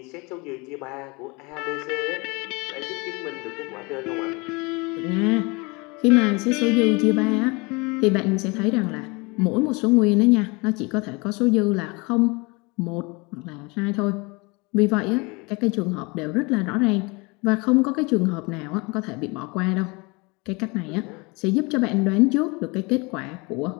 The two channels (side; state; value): right; quieter; 27.2 dB